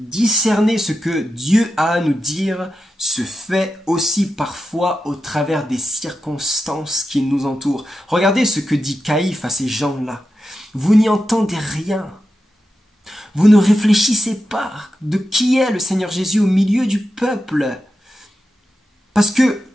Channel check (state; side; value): normal; both; correlation 0.90